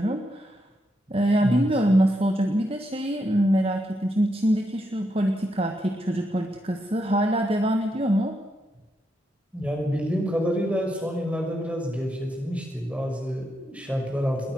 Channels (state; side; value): normal; both; correlation 0.82